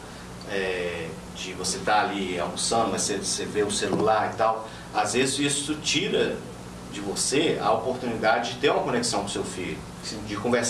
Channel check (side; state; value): both; identical; correlation 1.00